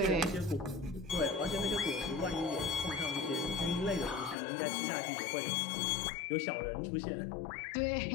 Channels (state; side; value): drops out; right; at 4.4 s